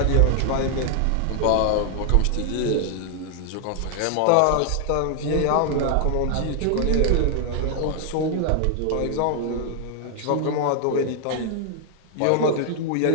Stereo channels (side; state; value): both; different; correlation 0.00